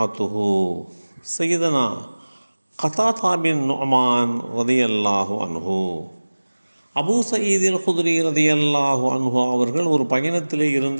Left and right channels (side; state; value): both; inverted; correlation -1.00